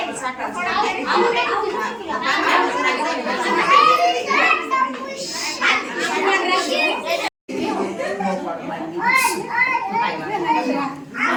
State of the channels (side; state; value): both; identical; correlation 1.00